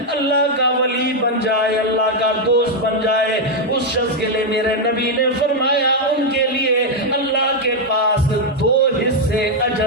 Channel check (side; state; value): both; normal; correlation 0.00